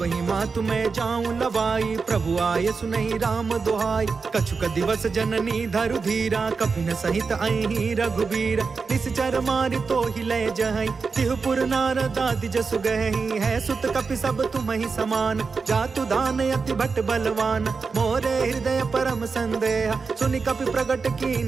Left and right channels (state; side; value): quieter; left; 4.8 dB